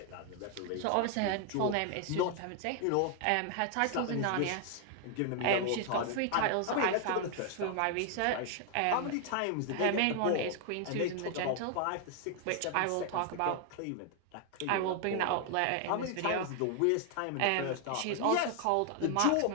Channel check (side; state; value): both; different; correlation 0.00